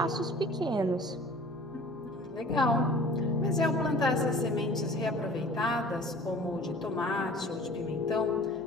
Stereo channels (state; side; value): normal; both; correlation 0.46